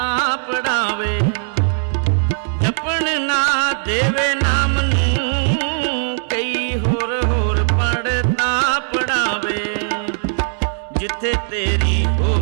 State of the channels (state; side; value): silent; left; digital silence